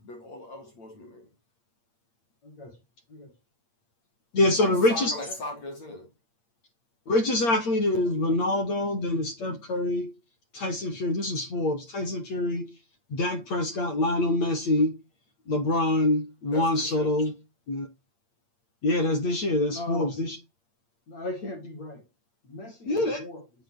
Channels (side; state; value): right; late; 8.7 ms